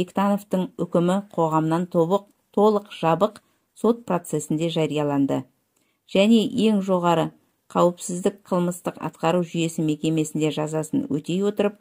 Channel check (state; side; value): identical; both; correlation 1.00